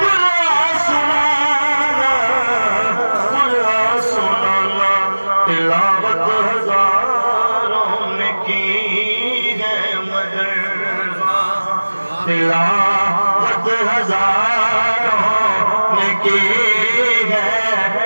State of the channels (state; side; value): inverted; both; correlation -1.00